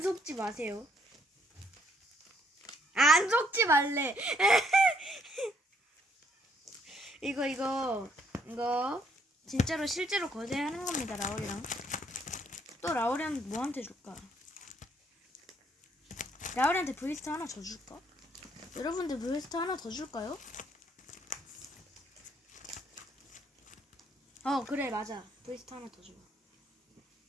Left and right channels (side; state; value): both; normal; correlation 0.68